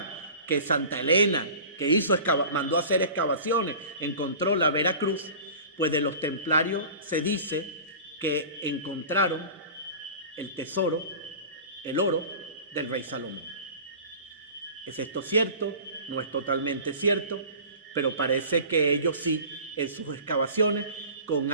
que Santa Elena, que mandó a hacer excavaciones, encontró la Veracruz, pues de los templarios se dice que encontraron el tesoro, el oro del rey Salomón. ¿Es esto cierto? No es totalmente cierto, pero parece que ellos sí, en sus excavaciones, con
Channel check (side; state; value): both; inverted; correlation -0.39